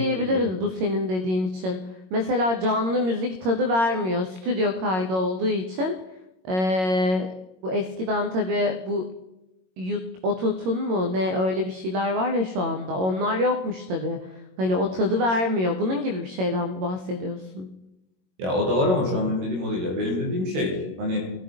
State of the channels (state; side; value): late; left; 22 ms